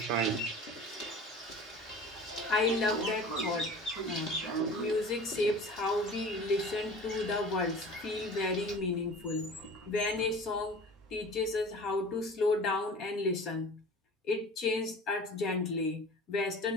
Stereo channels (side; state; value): both; normal; correlation 0.40